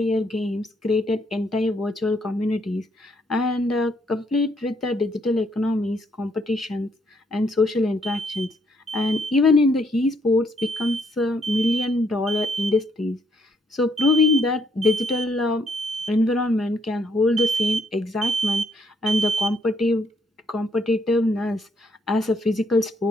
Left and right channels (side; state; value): both; normal; correlation 0.71